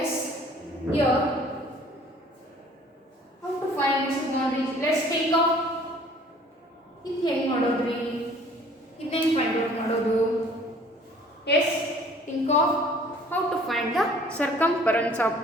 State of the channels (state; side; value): normal; both; correlation 0.53